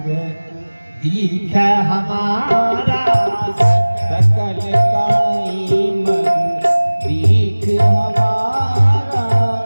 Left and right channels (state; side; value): inverted; both; correlation -1.00